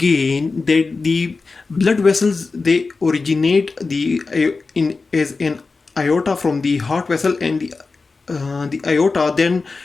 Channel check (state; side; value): quieter; right; 4.1 dB